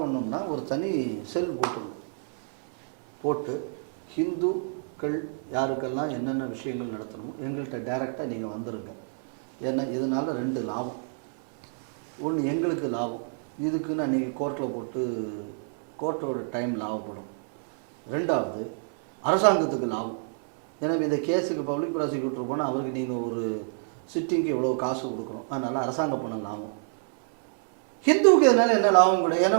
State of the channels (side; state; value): left; silent; 58 dB below the other